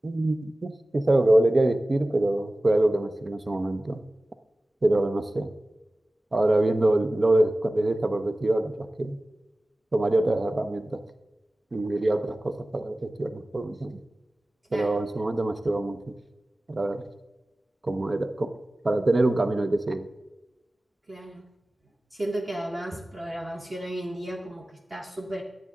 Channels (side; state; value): both; normal; correlation 0.97